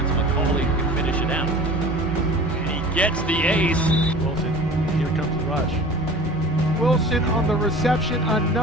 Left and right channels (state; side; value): normal; both; correlation 0.41